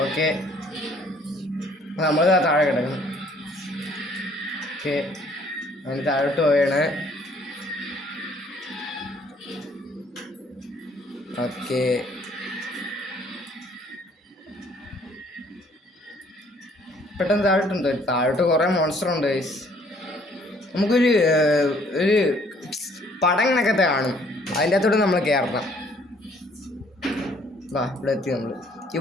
ഓക്കെ, നമ്മൾ താഴെ കിടക്കണം. ഓക്കെ, അതിന് താഴോട്ട് പോയാണ്. ഓക്കെ, പെട്ടെന്ന് താഴോട്ടുണ്ട്. താഴോട്ട് കുറേ മോൺസ്റ്റർ ഉണ്ട് ഗൈസ്. നമുക്കൊരു ഒരു പടം കണക്കത്തെ കാണും. അതിൻ്റെ അകത്തോട്ട് നമ്മൾ കയറണം. വാ, ഇവിടെ എത്തി. നമ്മൾ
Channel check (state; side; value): normal; both; correlation 0.61